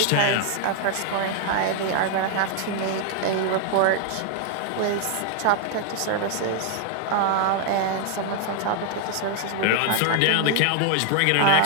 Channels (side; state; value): both; different; correlation 0.00